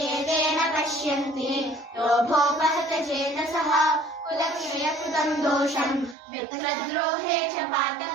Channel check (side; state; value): left; drops out; at 6.2 s